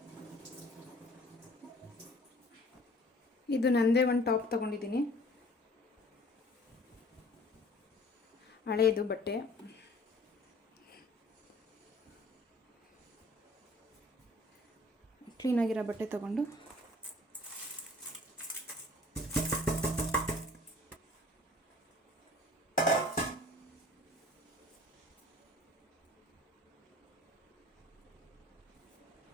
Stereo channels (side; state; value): both; normal; correlation 0.51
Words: ಇದು ನಂದೇ 1 ಟಾಪ್ ತೊಗೊಂಡಿದ್ದೀನಿ, ಹಳೇದು ಬಟ್ಟೆ. ಕ್ಲೀನಾಗಿರೋ ಬಟ್ಟೆ ತೊಗೊಂಡು